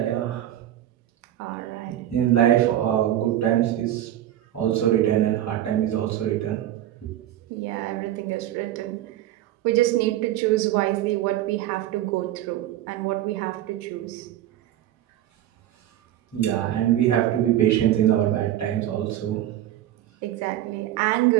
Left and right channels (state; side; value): quieter; left; 12.7 dB